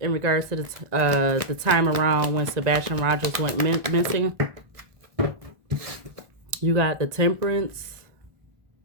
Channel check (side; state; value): left; late; 1.4 ms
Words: regards to the time around when Sebastian Rogers went missing. You got the Temperance,